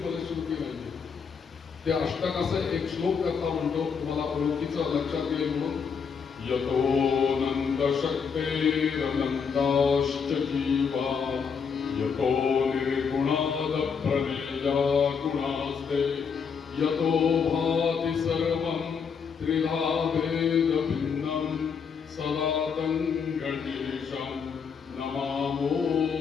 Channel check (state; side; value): quieter; right; 6.2 dB